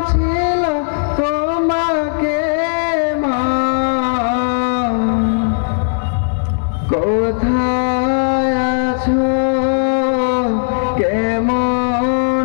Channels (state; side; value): silent; right; digital silence